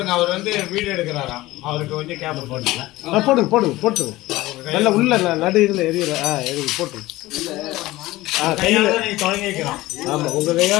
அவர் வந்து வீடியோ எடுக்கிறாராம். அவருக்கு கொஞ்சம் கேப் போடுங்க. போட்டுங்க நல்ல உள்ள நடு இதுல எரியல. எரிய போட்டுங்க. கையால நீ தொடங்கி வைக்கிறோம். ஆமா உங்க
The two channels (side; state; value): right; quieter; 18.1 dB